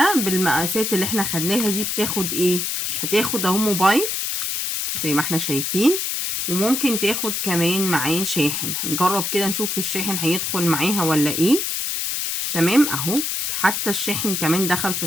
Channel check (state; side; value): noise; left; hiss, 1 dB below the sound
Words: بالمقاسات اللي احنا خدناها دي بتاخد ايه؟ هتاخد اهو موبايل زي ما احنا شايفين، وممكن تاخد كمان معاه شاحن. هنجرب كده نشوف الشاحن هيدخل معاها ولا ايه. تمام اهو، حتى الشاحن كمان دخل في